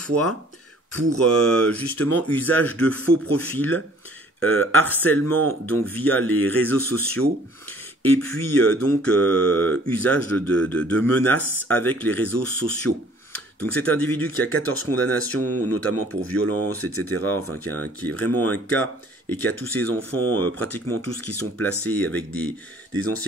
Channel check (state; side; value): normal; both; correlation 0.55